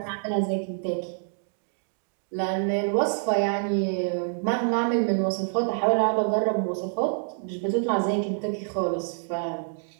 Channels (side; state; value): left; silent; digital silence